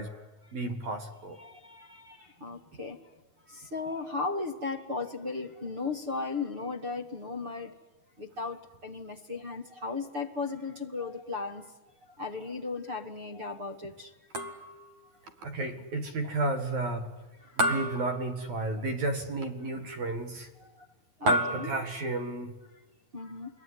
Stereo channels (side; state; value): left; late; 9.3 ms